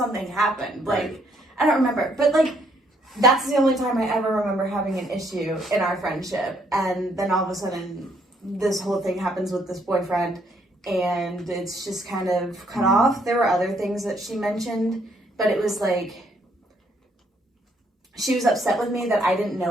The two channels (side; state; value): both; normal; correlation 0.69